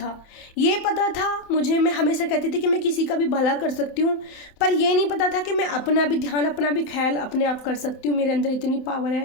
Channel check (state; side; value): late; right; 27 ms